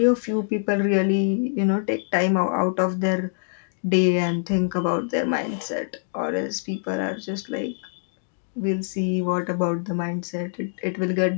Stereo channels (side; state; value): right; silent; digital silence